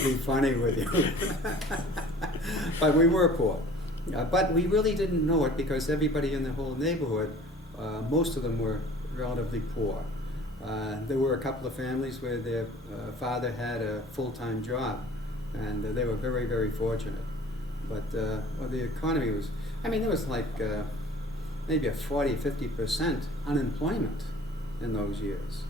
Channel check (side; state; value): both; normal; correlation 0.47